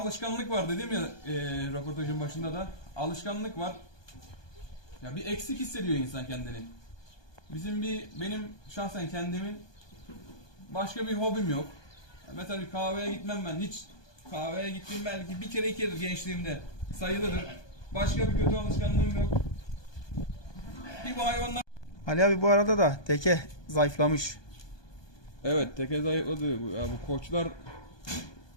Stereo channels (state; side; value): late; right; 1.2 ms